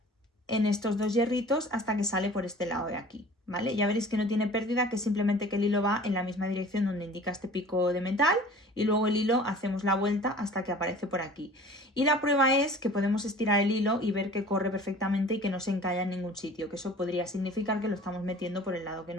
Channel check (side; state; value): both; normal; correlation 0.45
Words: en estos dos hierritos hasta que sale por este lado de aquí, ¿vale? Ya veréis que no tiene pérdida, que simplemente que el hilo va en la misma dirección donde indica este pico de metal y luego el hilo hacemos la vuelta hasta que aparece por aquí. Y la prueba es que podemos estirar el hilo y ver que corre perfectamente y que no se encalla en ningún sitio, que eso podría significar que lo estamos metiendo por el lado que